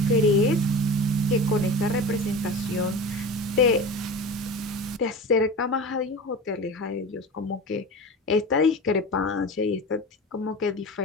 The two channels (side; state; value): both; normal; correlation 0.31